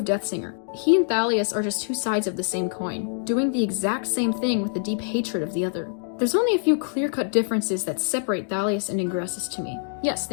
Deathsinger. He and Thalleus are just two sides of the same coin, doing the exact same thing with a deep hatred of the other. There's only a few clear-cut differences that separate Thalleus and Ingressus to me. Yes,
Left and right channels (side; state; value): right; silent; digital silence